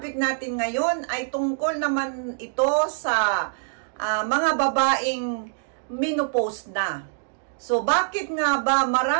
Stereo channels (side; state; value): left; silent; digital silence